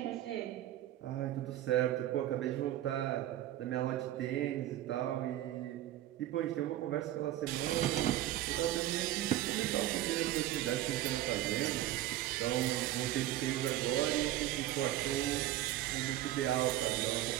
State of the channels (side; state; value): left; quieter; 13.9 dB